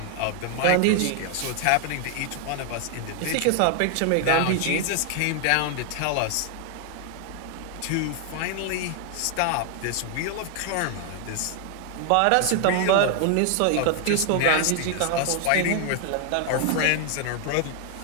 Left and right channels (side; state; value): both; different; correlation 0.00